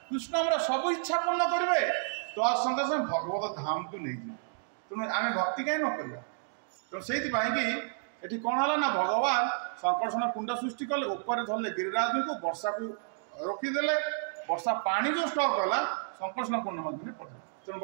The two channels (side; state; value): left; silent; digital silence